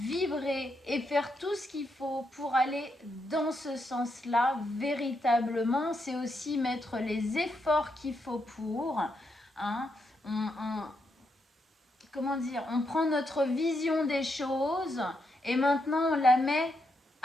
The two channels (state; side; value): normal; both; correlation 0.81